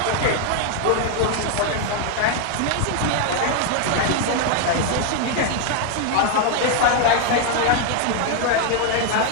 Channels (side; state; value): both; different; correlation 0.00